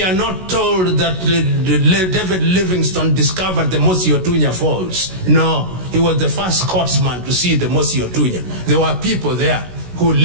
are not told that David Livingstone discovered the Mosi Otunya Falls. No, he was the first Scotsman to see the Mosi Otunya. There were people there who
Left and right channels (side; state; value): left; late; 16 ms